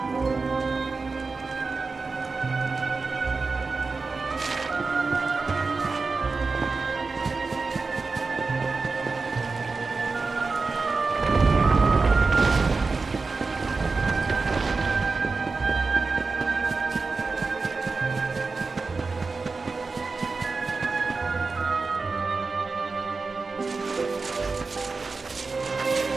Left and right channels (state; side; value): quieter; left; 4.1 dB